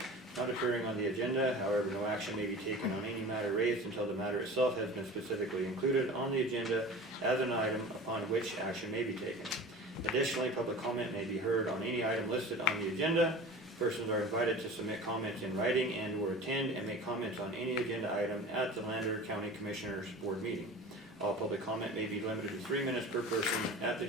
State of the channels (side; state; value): both; normal; correlation 0.37